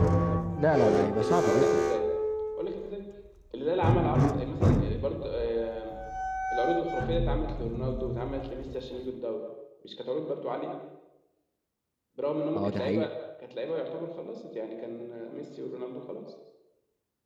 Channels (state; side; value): identical; both; correlation 1.00